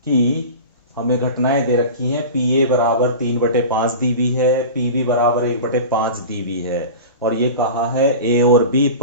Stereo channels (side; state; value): both; inverted; correlation -0.32